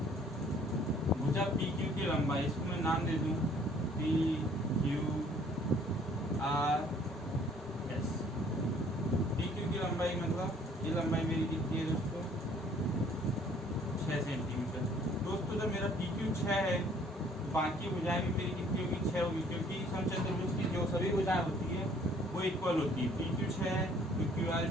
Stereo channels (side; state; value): both; normal; correlation 0.58